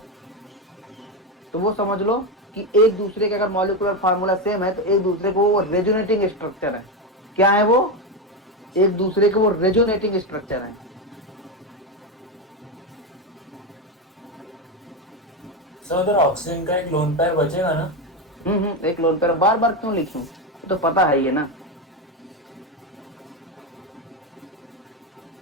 तो वो समझ लो कि एक दूसरे के, अगर मॉलिक्यूलर फार्मूला सेम है तो एक दूसरे को वो रेजोनेटिंग स्ट्रक्चर है। क्या है वो? एक दूसरे के वो रेजोनेटिंग स्ट्रक्चर है। सर उधर ऑक्सीजन का एक लोन पेयर बचेगा ना? एक लोन पेयर बार बार क्यों लिखूं, तो पता है ये ना।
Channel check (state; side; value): normal; both; correlation 0.12